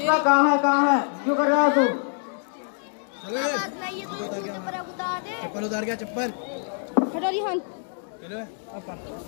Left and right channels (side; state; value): right; silent; 61 dB below the other